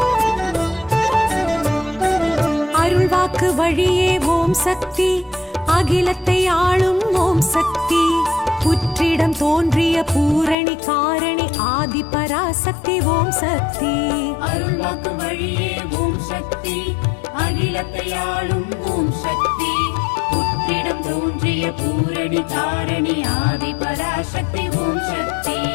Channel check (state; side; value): drops out; right; at 10.6 s